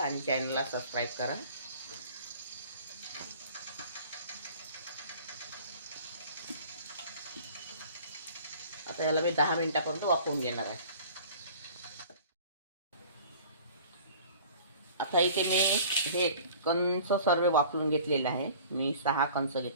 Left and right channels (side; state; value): both; inverted; correlation -0.46